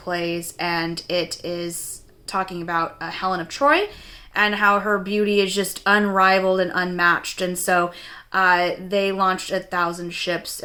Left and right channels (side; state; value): both; identical; correlation 1.00